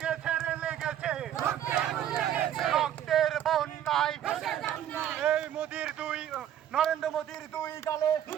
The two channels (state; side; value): quieter; left; 10.8 dB